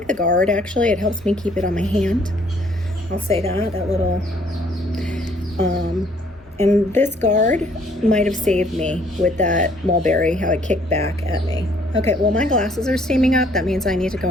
the guard actually. It helps me keep it on my hand. I'll say that little and this guard might have saved me with that mulberry, how it kicked back at me. Okay, well my glasses are steaming up. That means I need to go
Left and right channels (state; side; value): normal; both; correlation 0.62